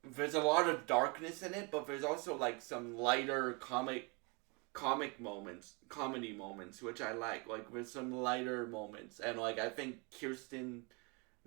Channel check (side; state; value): left; quieter; 30.8 dB